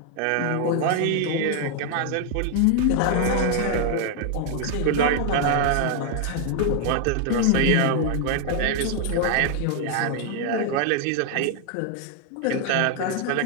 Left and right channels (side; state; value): both; different; correlation 0.00